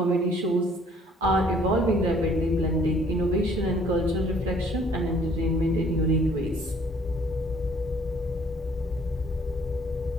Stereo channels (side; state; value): both; normal; correlation 0.59